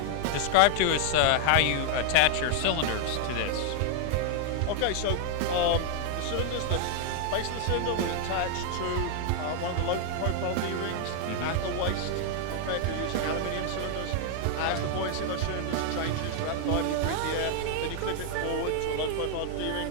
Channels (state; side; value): different; both; correlation 0.00